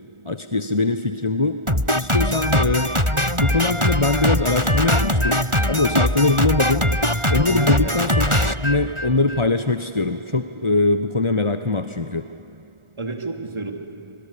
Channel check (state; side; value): late; left; 1.4 ms